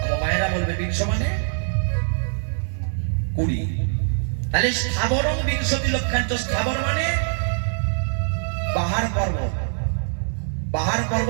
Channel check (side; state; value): left; silent; digital silence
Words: মায়েরা বলবে 20 মানে 20। তাহলে স্থাবরম 20 লক্ষাঞ্চ। স্থাবর মানে পাহাড় পর্বত। পাহাড়